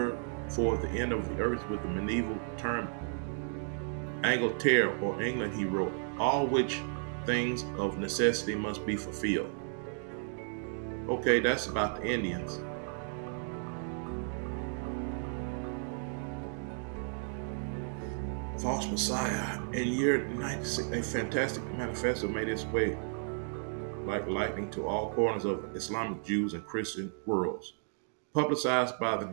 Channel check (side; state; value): left; silent; 55 dB below the other